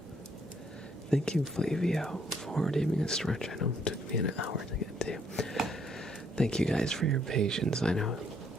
Thank you, Flavio, for giving a stretch. I know it took me an hour to get to. Thank you guys for your patience. I know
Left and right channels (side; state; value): both; normal; correlation 0.68